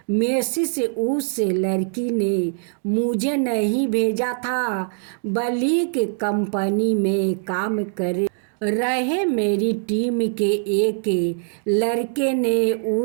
मैसेज उस लड़की ने मुझे नहीं भेजा था। बलीक कंपनी में काम कर रहे मेरी टीम के एक लड़के ने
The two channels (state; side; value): silent; left; digital silence